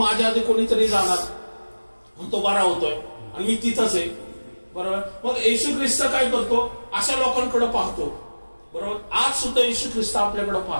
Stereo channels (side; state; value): both; inverted; correlation -1.00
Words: आधी कोणीतरी जाणार, तो बरा होतोय आणि मी तिथंच आहे. बरोबर? मग येशू ख्रिस्त काय करतो, अशा लोकांकडे पाहतो. बरोबर? आज सुद्धा येशू ख्रिस्त आपल्याकडे